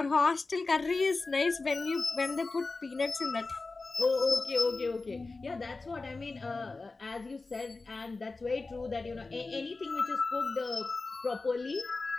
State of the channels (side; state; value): right; quieter; 3.7 dB